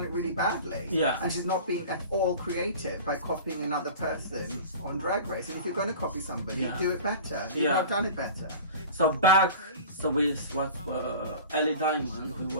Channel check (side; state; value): both; inverted; correlation -0.38